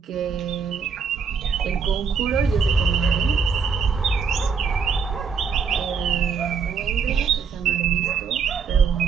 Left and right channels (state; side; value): quieter; left; 5.8 dB